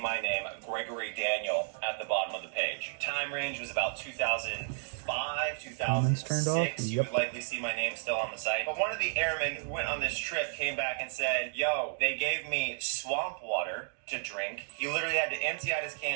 name, Gregory Daniel, at the bottom of the page. Time range was about 2005, 2006. You would likely see my name still on the site. But one of the airmen who went on this trip came back and said, yo, they gave me swamp water to drink. He literally had to empty out his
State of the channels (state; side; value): silent; left; digital silence